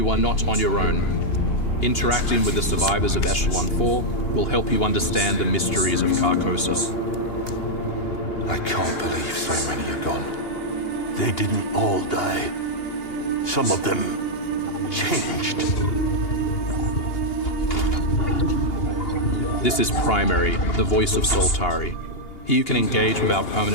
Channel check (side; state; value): right; late; 2.8 ms